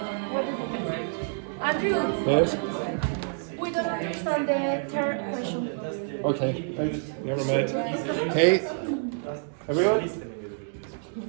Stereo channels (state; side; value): silent; left; digital silence